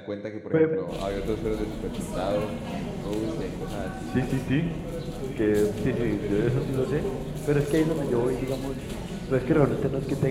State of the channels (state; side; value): identical; both; correlation 1.00